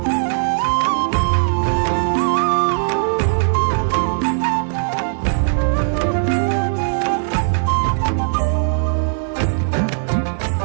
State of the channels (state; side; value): silent; left; 67 dB below the other